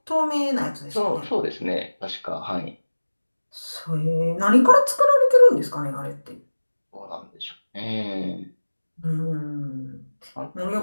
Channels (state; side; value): inverted; both; correlation -1.00